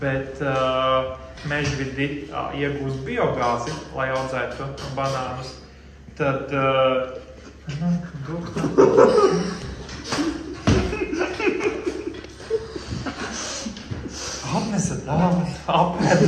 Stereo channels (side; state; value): both; identical; correlation 1.00